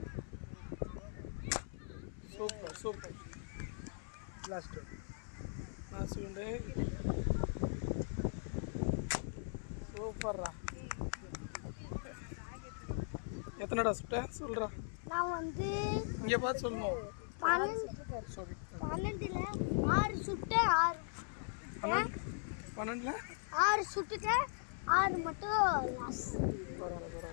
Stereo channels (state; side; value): silent; right; 51 dB below the other